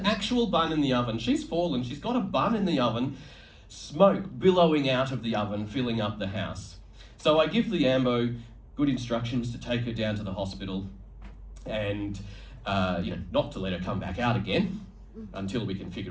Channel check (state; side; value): identical; both; correlation 1.00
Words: actual bun in the oven. She's fallen, she's got a bun in the oven, smoke billowing out of the oven, filling up the house. So I give the ambo good instructions to take her down to the hospital and, not to let her come back out again until we can